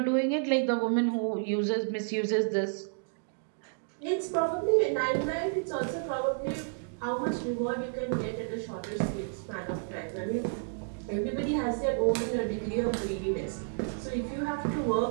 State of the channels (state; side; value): silent; left; digital silence